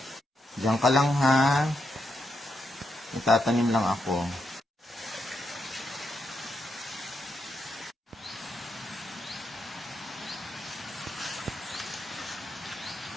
Diyan ka lang ha. Magtatanim lang ako.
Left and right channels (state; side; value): normal; both; correlation 0.82